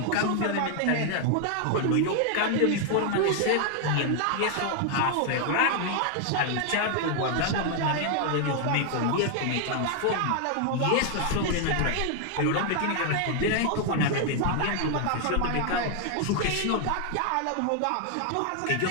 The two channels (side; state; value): both; different; correlation 0.00